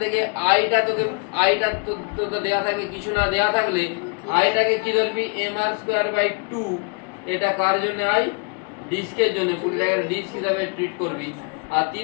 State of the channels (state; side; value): quieter; right; 34.9 dB